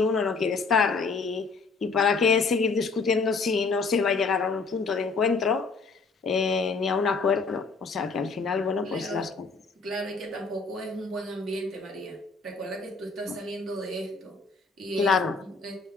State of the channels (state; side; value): quieter; right; 4.3 dB